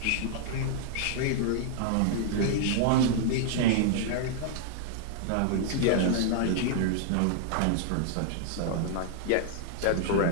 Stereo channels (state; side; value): different; both; correlation -0.01